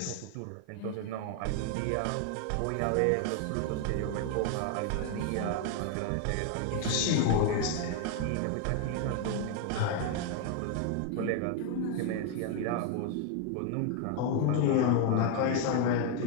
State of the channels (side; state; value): both; different; correlation 0.01